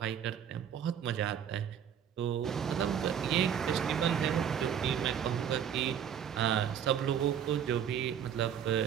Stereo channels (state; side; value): quieter; left; 8.7 dB